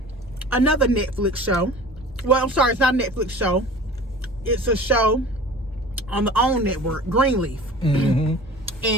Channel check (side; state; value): both; normal; correlation 0.41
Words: another Netflix show. Well, I'm sorry, it's not a Netflix show. It's a show on the OWN network, Greenleaf. And